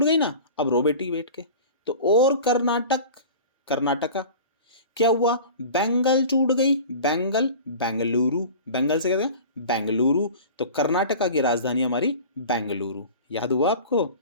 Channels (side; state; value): both; inverted; correlation -0.38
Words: गई ना। अब रो बेटी बैठ के, तो और कर्नाटक, कर्नाटका क्या हुआ, बैंगल टूट गई। बैंगल बेंगलुरु, बैंगल से कहते हैं बेंगलुरु। तो कर्नाटका की राजधानी हमारी बेंगलुरु। याद हुआ आपको?